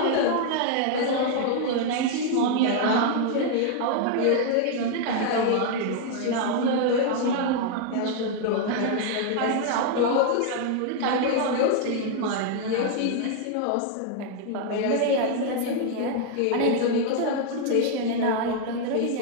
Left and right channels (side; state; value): both; different; correlation 0.00